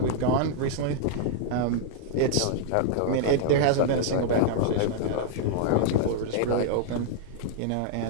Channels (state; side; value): different; both; correlation -0.01